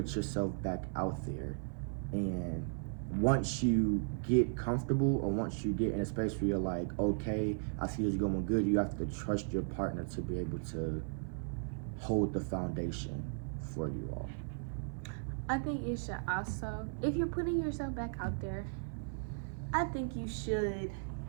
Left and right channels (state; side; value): silent; left; 54 dB below the other